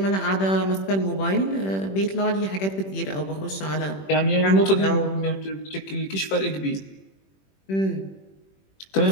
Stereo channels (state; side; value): late; right; 21 ms